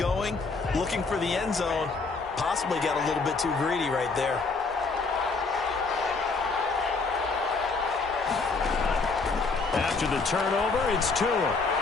looking for the end zone. Possibly got a little bit too greedy right there. After the turnover, it's Tua.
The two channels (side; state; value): right; quieter; 4.2 dB